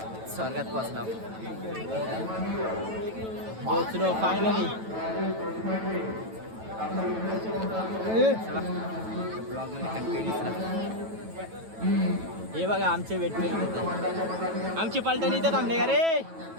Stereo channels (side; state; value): left; late; 9.1 ms